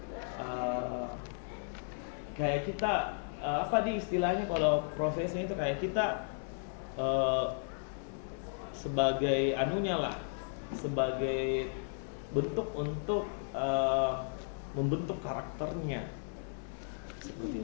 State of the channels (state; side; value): silent; right; 55 dB below the other